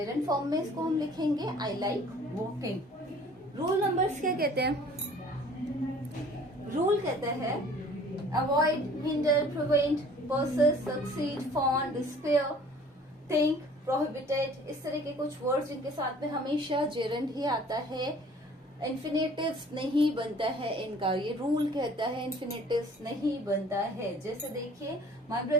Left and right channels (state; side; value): normal; both; correlation 0.51